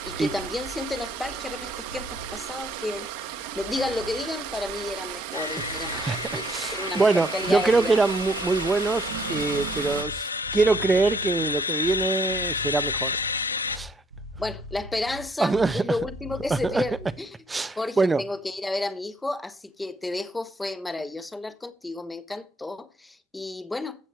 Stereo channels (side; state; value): both; normal; correlation 0.66